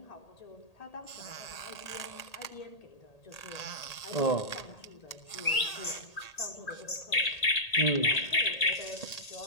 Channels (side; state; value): right; late; 1.8 ms